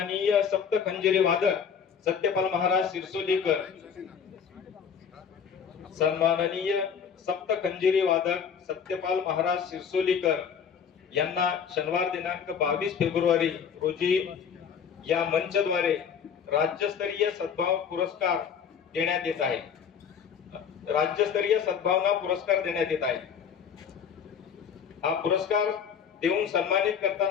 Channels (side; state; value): right; quieter; 7.2 dB